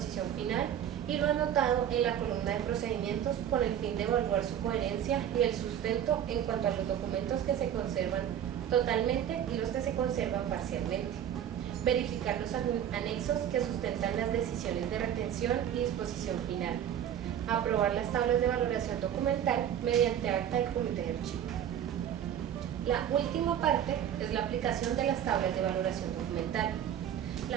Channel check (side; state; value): left; quieter; 9.9 dB